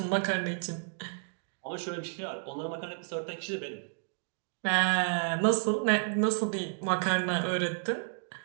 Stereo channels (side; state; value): left; silent; digital silence